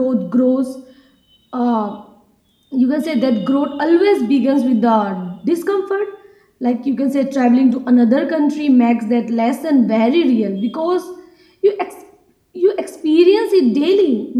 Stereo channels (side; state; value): both; identical; correlation 1.00